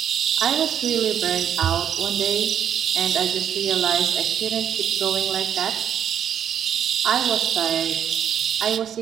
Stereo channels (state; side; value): quieter; left; 9.1 dB